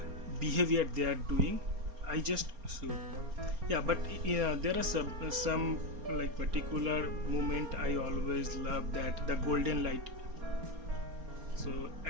behavior they are doing, I just shoot. Yeah, but yeah, there are some like particular moment I always love, that the golden light. So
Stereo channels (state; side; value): late; left; 4.3 ms